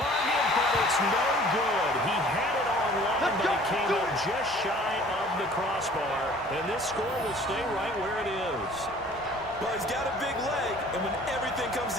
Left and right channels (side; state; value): both; normal; correlation 0.51